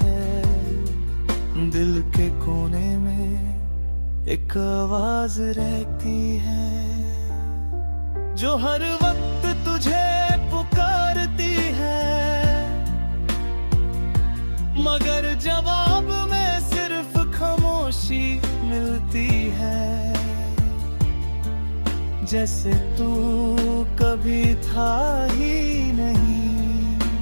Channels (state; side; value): inverted; both; correlation -1.00